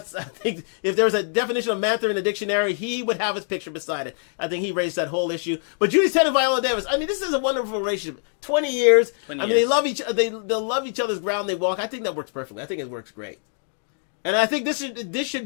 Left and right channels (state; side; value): silent; right; 63 dB below the other